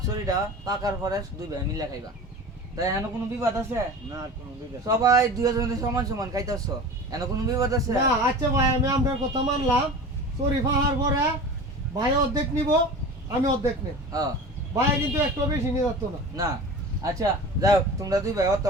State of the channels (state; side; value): normal; both; correlation 0.35